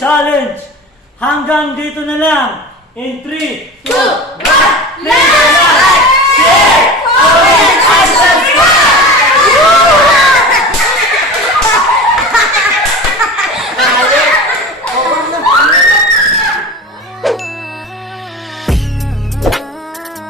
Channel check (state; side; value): normal; both; correlation 0.33